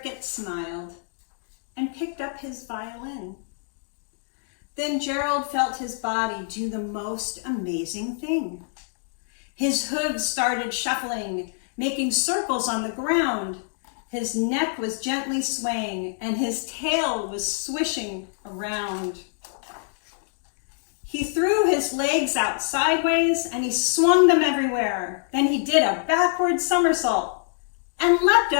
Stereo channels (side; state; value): right; silent; digital silence